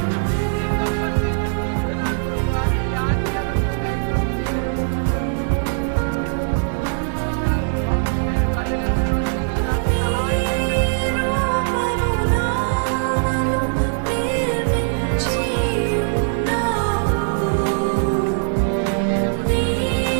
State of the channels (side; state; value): left; silent; 56 dB below the other